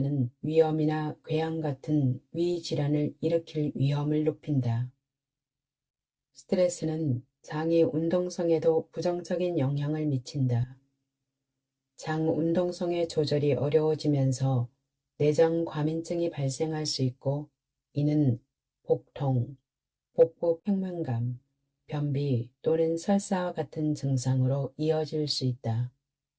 위염이나 궤양 같은 위 질환을 일으킬 위험을 높인다. 스트레스는 장의 운동성에도 부정적인 영향을 미친다. 장 운동성의 조절이 어려워지면서 내장 과민증이 발생할 수 있고 이는 복통, 복부 팽만감, 변비 또는 설사와 같은 증상으로 이어질 수 있다.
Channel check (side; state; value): both; identical; correlation 1.00